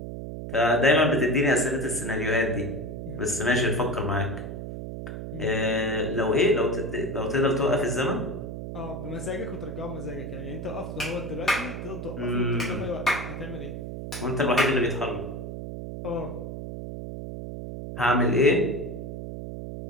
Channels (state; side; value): noise; right; hum, 7 dB below the sound